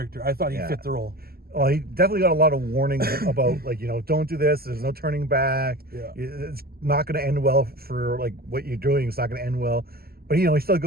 I thought he fit the role. Well, he definitely got a lot of warnings about don't do this. There's no turning back. Yeah. It's not going to end well for what you're doing. It's not going to end well. But he still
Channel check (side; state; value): left; late; 0.45 ms